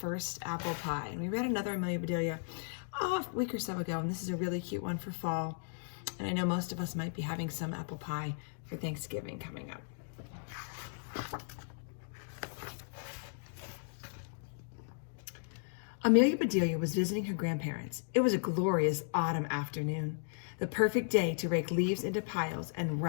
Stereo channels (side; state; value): right; silent; digital silence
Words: Apple Pie. And we read another Amelia Bedelia a week or so ago, and this is a really cute one for fall. And I know most of us might be having some apple pie for Thanksgiving coming up. Amelia Bedelia was visiting her grandparents. It was a glorious autumn afternoon, the perfect day to rake leaves into piles and